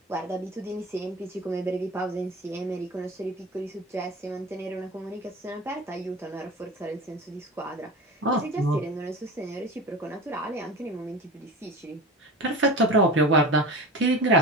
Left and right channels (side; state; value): both; normal; correlation 0.31